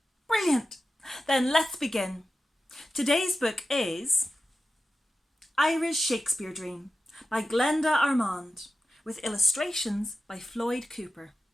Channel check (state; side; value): normal; both; correlation 0.93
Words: Brilliant! Then let's begin. Today's book is Ira's Shakespeare Dream by Glenda Armand with illustrations by Floyd Cooper.